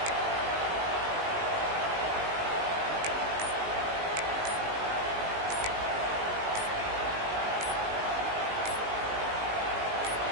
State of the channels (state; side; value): late; left; 19 ms